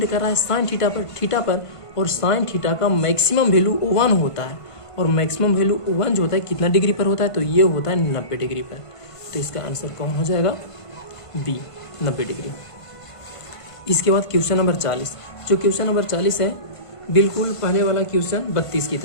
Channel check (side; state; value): right; late; 1.5 ms